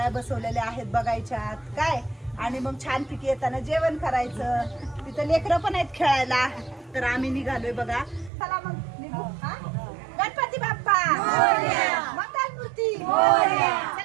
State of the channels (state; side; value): drops out; left; at 8.3 s